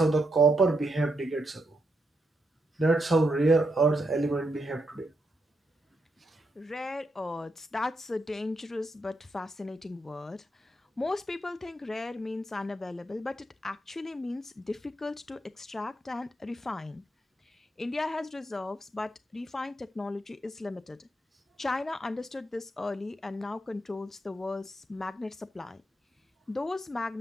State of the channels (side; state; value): both; normal; correlation 0.81